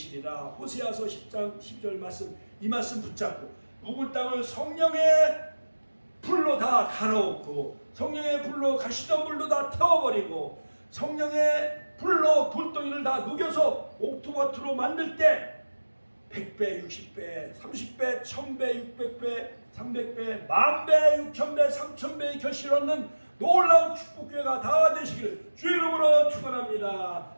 호세아서 10장 12절 말씀, 이 말씀 붙잡고 묵은 땅을 성령의 불로 다 갈아엎고, 성령의 불로 가시덤불로 다 태워버리고, 성령의 불로 돌덩이를 다 녹여서 옥토마토로 만들 때 100배, 60배, 30배, 1000배, 600배, 300배, 10,000배, 6,000배, 3,000배의 결실을 얻는 놀라운 축복교회가 다 되시기를 주 이름으로 축원합니다.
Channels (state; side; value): inverted; both; correlation -1.00